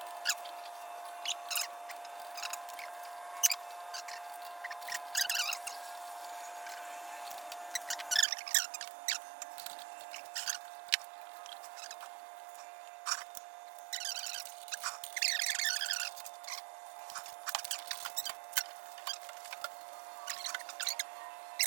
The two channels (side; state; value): left; drops out; at 8.2 s